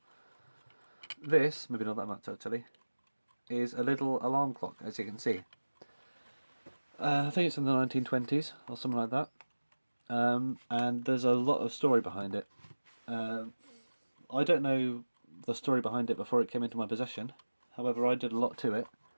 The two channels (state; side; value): inverted; both; correlation -1.00